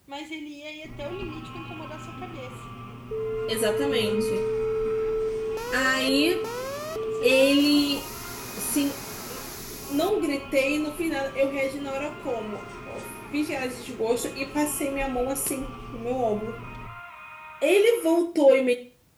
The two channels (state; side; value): identical; both; correlation 1.00